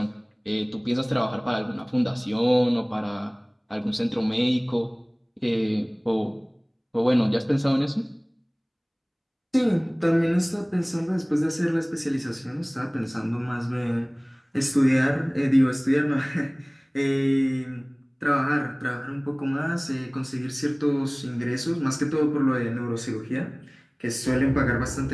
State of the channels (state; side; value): identical; both; correlation 1.00